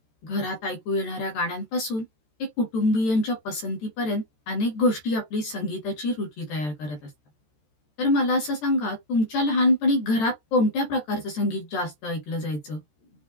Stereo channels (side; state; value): right; late; 13 ms